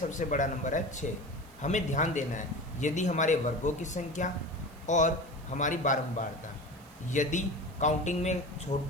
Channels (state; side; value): noise; right; hiss, 26 dB below the sound